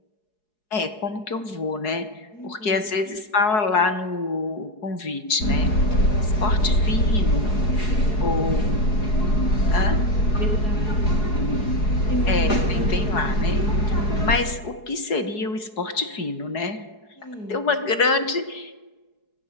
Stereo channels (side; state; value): right; late; 4.7 ms